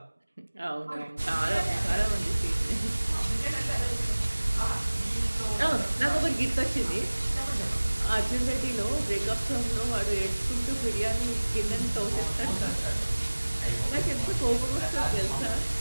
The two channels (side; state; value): both; inverted; correlation -1.00